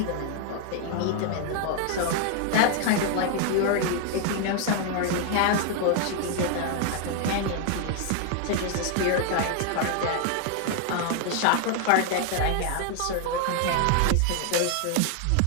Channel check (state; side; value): different; both; correlation 0.00